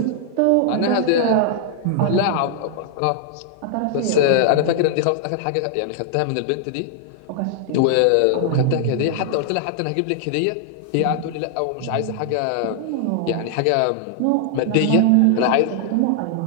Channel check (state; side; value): different; both; correlation -0.01